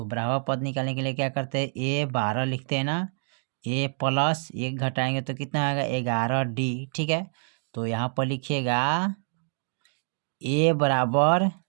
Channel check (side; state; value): left; silent; digital silence